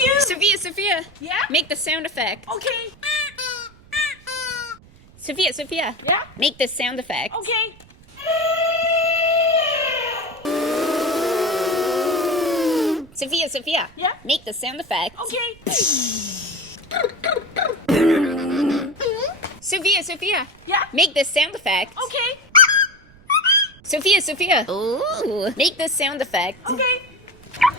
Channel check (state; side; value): noise; right; rumble, 25 dB below the sound